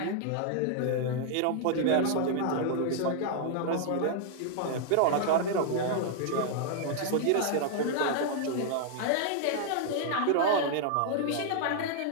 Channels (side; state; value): both; different; correlation -0.01